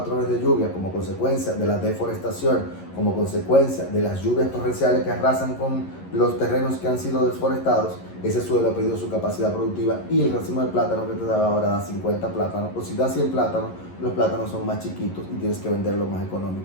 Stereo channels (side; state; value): right; late; 11 ms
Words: de lluvia, como consecuencia de la deforestación, como consecuencia de las lluvias torrenciales que arrasan con los terrenos que han sido desforestados, ese suelo ha perdido su capacidad productiva y el racimo de plátano que te daba ahora da 50 plátanos, o si da 100 plátanos, los plátanos son más chiquitos y tienes que venderlo más